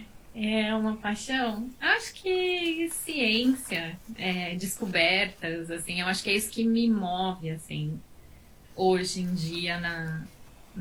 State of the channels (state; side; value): identical; both; correlation 1.00